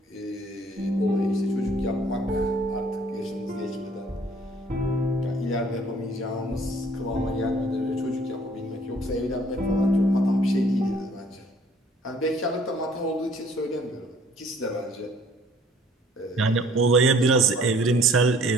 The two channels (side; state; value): both; normal; correlation 0.57